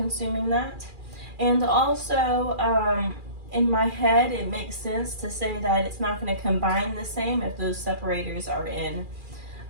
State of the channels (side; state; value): left; late; 2.4 ms